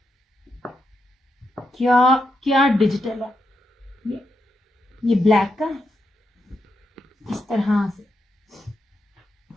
क्या क्या डिजिटल है। ये ब्लैक का इस तरह से,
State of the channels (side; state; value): both; normal; correlation 0.83